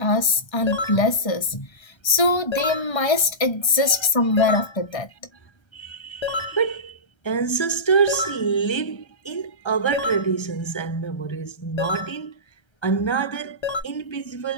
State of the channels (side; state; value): right; late; 1.3 ms